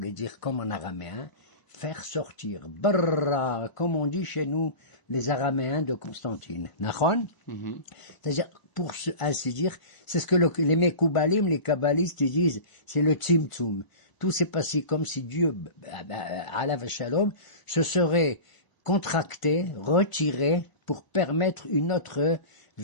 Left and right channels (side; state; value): right; late; 1.0 ms